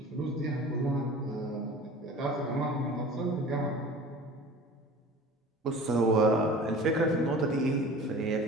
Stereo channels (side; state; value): both; normal; correlation 0.41